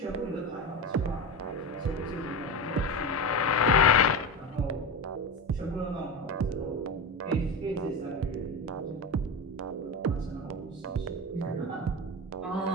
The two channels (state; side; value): normal; both; correlation 0.22